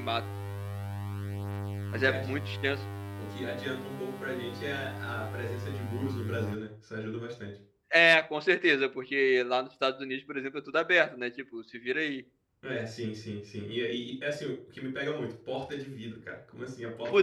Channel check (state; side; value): identical; both; correlation 1.00